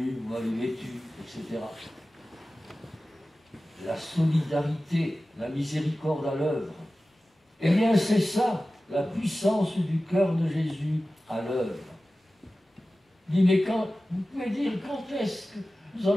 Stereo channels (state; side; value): normal; both; correlation 0.96